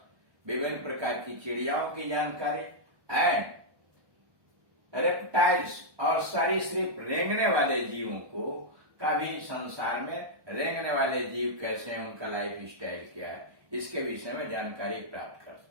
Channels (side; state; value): left; late; 1.2 ms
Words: विभिन्न प्रकार की चिड़ियाओं की जानकारी। एंड रेप्टाइल्स, और सरीसृप रेंगने वाले जीवों को का भी, संसार में रेंगने वाले जीव कैसे हैं, उनका लाइफ स्टाइल क्या है, इसके विषय में जानकारी प्राप्त कर